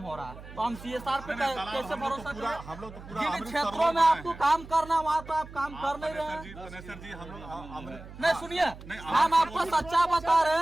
हो रहा है। तो हम CSR पे कैसे भरोसा करें? हम लोग तो जिन क्षेत्रों में आपको काम करना वहाँ तो आप काम कर नहीं रहे हैं। सर जी हम लोग नहीं सुनिए, हम आपको सच्चा बता रहे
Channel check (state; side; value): noise; right; hum, 16 dB below the sound